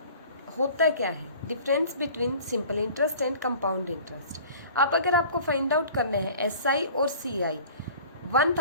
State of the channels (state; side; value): inverted; both; correlation -0.45